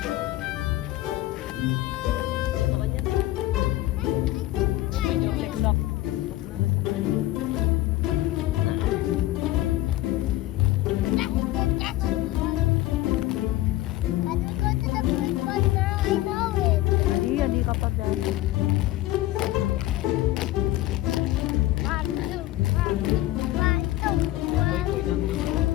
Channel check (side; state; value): right; quieter; 16.3 dB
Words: Lock. Can we go to the big one now? I know it. Hindi ka pa dyan. One, two, one, two, one.